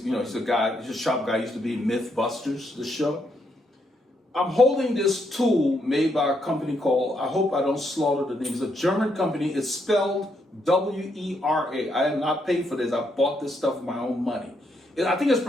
a shop guy, used to be in Mythbusters, the show. I'm holding this tool made by a company called, I hope I don't slaughter the name, it's a German company. It's spelled W-E-R-A. I have not paid for this. I bought this stuff with my own money. I think it's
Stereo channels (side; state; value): both; normal; correlation 0.77